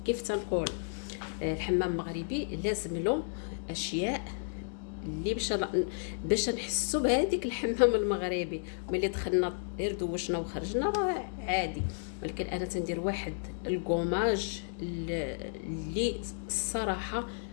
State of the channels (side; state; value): right; silent; digital silence